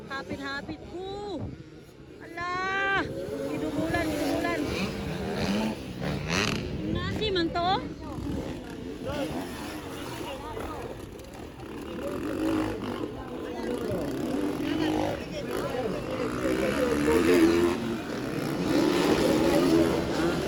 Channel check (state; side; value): identical; both; correlation 1.00